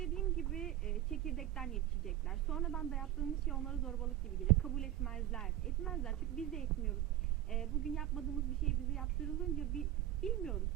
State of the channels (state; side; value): quieter; left; 13.0 dB